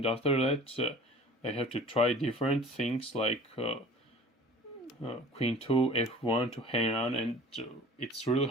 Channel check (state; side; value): normal; both; correlation 0.45